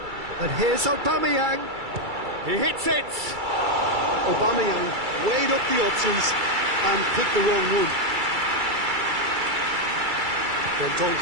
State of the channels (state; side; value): late; left; 2.3 ms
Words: And here's Aubameyang. He hits it! Aubameyang weighed up the options and picked the wrong one. Then